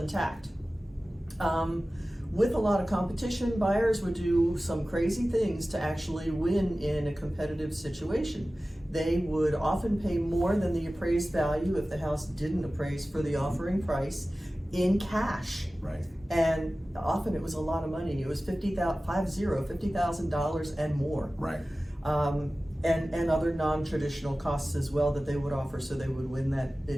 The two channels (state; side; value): normal; both; correlation 0.96